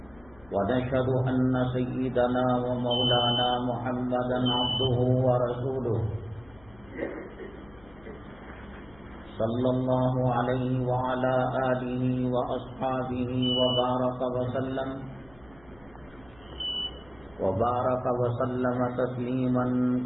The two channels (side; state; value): left; noise; hum, 26 dB below the sound